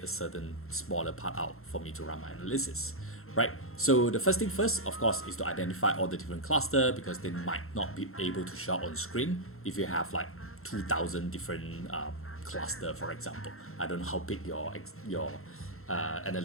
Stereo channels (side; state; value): right; late; 0.62 ms